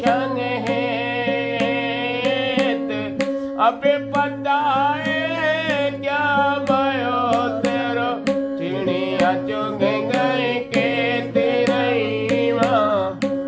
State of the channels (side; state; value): both; identical; correlation 1.00